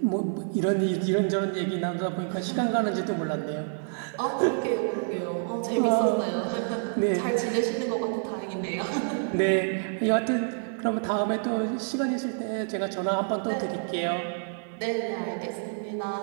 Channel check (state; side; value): silent; left; digital silence